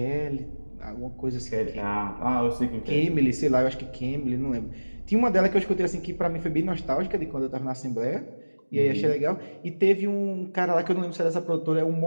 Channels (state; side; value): inverted; both; correlation -1.00